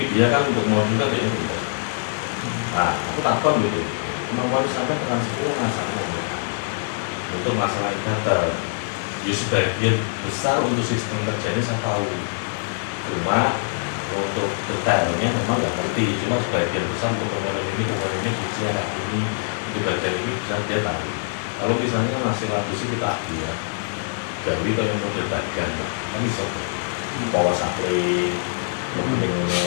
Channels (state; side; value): silent; right; 63 dB below the other